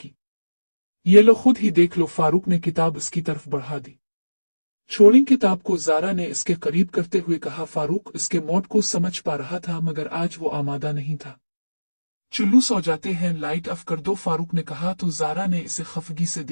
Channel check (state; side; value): inverted; both; correlation -1.00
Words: ये लो, खुद ही देख लो। फारूक ने किताब इसकी तरफ बढ़ा दी। छोड़ी किताब को ज़ारा ने इसके करीब करते हुए कहा। फारूक इसके मौत को समझ पा रहा था मगर आज वो आमादा नहीं था। चुल्लू सो जाते हैं, लाइट ऑफ कर दो, फारूक ने कहा तो ज़ारा ने इसे खफगी से